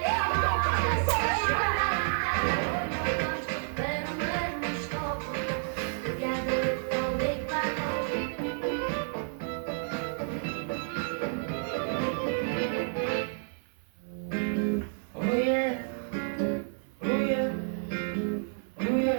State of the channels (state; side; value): silent; left; 58 dB below the other